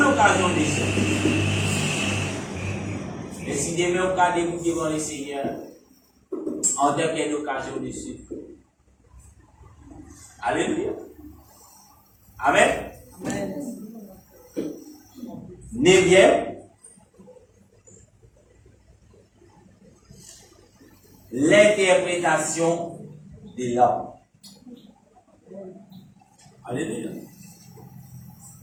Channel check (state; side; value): identical; both; correlation 1.00